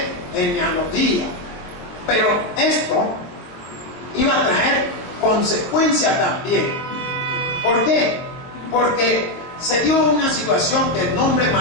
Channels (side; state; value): right; late; 22 ms